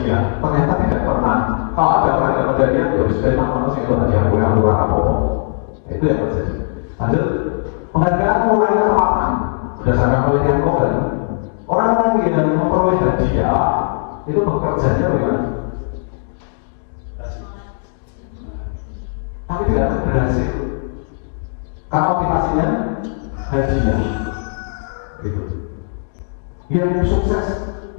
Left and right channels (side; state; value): right; silent; digital silence